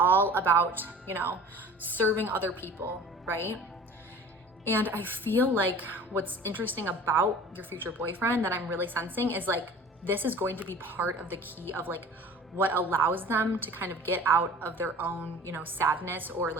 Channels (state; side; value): normal; both; correlation 0.43